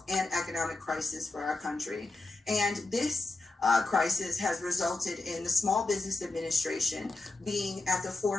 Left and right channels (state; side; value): quieter; right; 3.3 dB